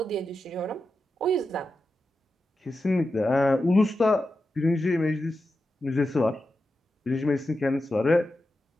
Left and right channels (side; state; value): both; normal; correlation 0.90